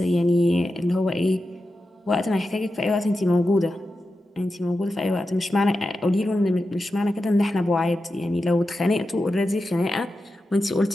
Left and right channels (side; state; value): both; normal; correlation 0.91